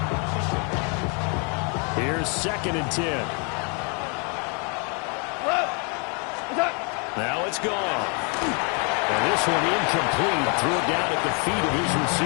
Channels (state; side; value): quieter; right; 35.9 dB